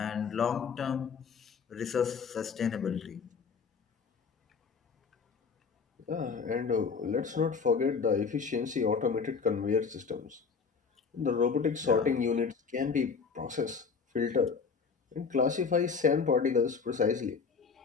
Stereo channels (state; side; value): quieter; right; 5.5 dB